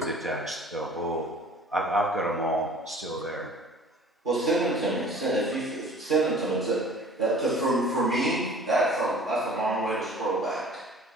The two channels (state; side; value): normal; both; correlation 0.47